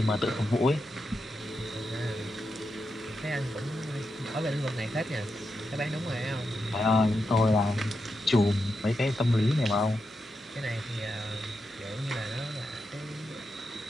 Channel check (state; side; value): normal; both; correlation 0.86